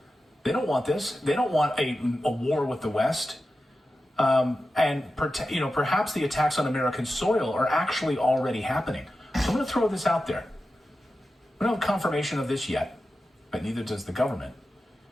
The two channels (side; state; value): both; normal; correlation 0.92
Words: They don't want this. They don't want a war with the West. Perhaps the attacks on American soil are actually already happening. So I'm going to throw this out there. We don't have confirmation of this yet, but neither does the government.